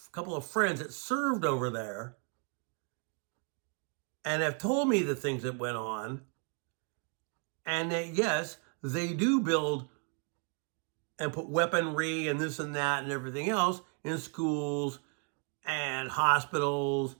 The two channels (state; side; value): quieter; left; 34.8 dB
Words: couple of friends that served over there and have told me the things that went on. And that, yes, they do build and put weaponry and this and that and everything else in schools and hospitals.